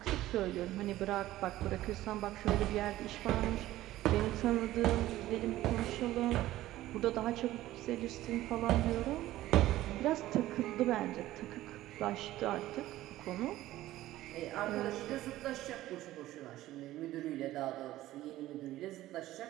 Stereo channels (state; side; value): quieter; left; 15.4 dB